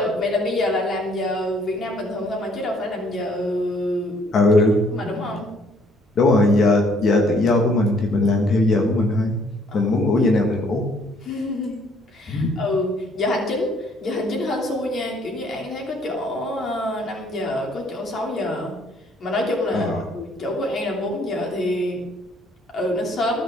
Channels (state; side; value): normal; both; correlation 0.63